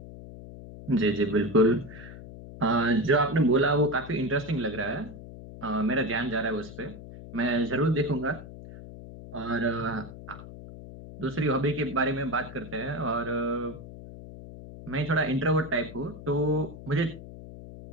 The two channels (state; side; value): noise; left; hum, 14 dB below the sound